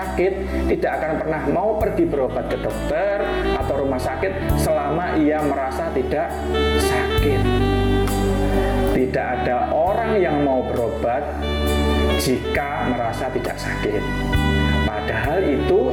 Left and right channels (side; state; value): both; identical; correlation 1.00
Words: tidak akan pernah mau pergi berobat ke dokter atau rumah sakit selama ia merasa tidak sakit. Tidak ada orang yang mau berobat jika merasa tidak sakit. Padahal itu